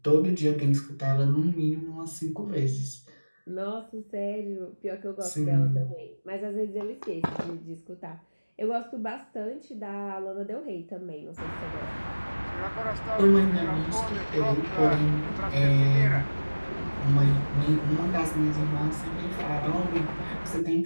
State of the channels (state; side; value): inverted; both; correlation -1.00